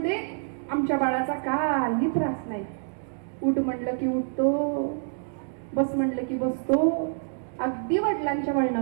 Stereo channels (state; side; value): silent; left; digital silence